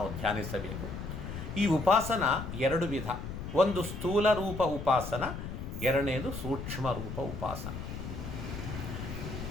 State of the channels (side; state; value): left; noise; rumble, 7 dB below the sound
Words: ಧ್ಯಾನಿಸಬೇಕು. ಈ ಉಪಾಸನ ಎರಡು ವಿಧ. ಒಂದು ಸ್ಥೂಲ ರೂಪ ಉಪಾಸನ, ಎರಡನೇದು ಸೂಕ್ಷ್ಮ ರೂಪ ಉಪಾಸನ.